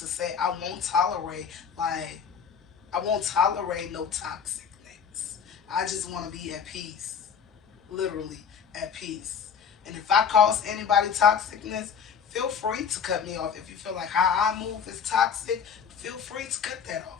say I won't tolerate no toxicness. I just want to be at peace. Literally at peace. And if I cause anybody toxicness, feel free to cut me off. If you feel like how I move is toxic, feel free to cut that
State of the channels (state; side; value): quieter; right; 6.9 dB